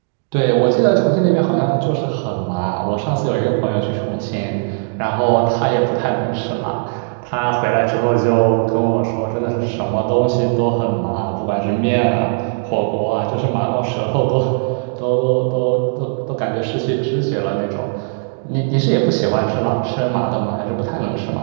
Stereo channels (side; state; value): left; silent; digital silence